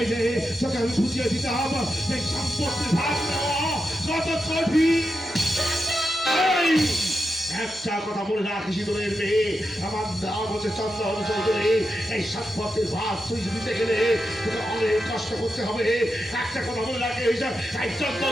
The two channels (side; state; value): both; normal; correlation 0.88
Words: যে তোকে আমি বুঝিয়ে দিতে হবে এই সম্পত্তির ভাগ দেওয়া কত কঠিন। একটা কথা মনে রাখিস, তোদের মেয়ে আমার নাম হচ্ছে চন্দন চৌধুরী। এই সম্পত্তির ভাগ তুই দিতে গেলে তোকে অনেক কষ্ট করতে হবে। একটা কথা মনে রাখে, এই